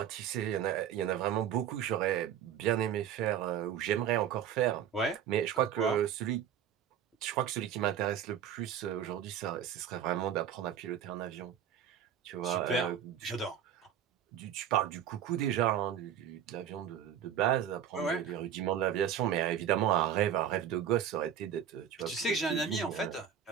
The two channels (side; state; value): left; quieter; 9.0 dB